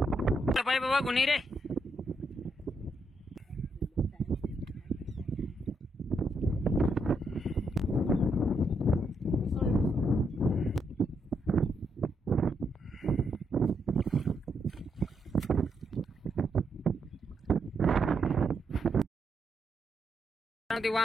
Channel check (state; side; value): normal; both; correlation 0.79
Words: पाय बाबा कोणी रे ते